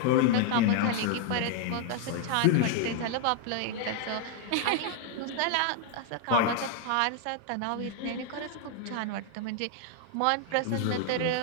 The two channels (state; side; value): different; both; correlation 0.00